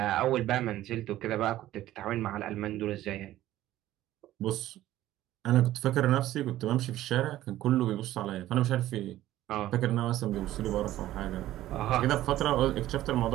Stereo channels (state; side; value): quieter; left; 14.3 dB